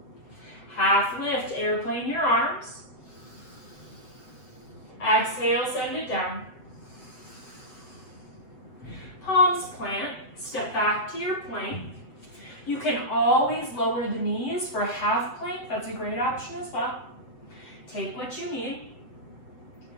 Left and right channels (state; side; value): late; right; 7.9 ms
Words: Half lift, airplane your arms. Exhale, send it down. Palms plant, step back to your plank. You can always lower the knees for a half plank. That's a great option as well. Take what you need.